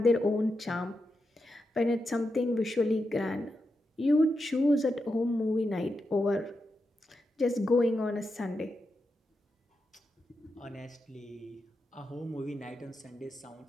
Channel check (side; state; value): both; normal; correlation 0.87